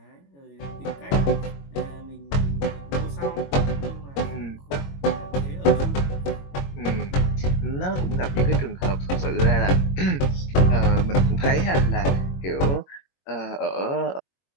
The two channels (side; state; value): right; late; 22 ms